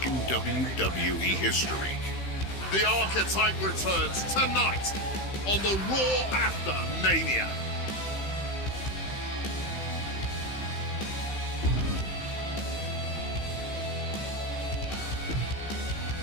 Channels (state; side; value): late; right; 15 ms